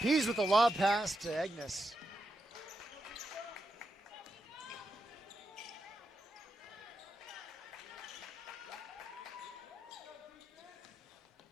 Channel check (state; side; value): normal; both; correlation 0.85